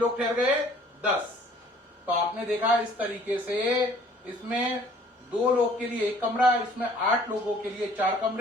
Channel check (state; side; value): normal; both; correlation 0.56